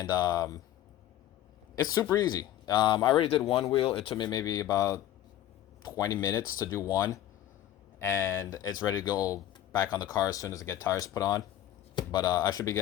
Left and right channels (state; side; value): quieter; right; 12.5 dB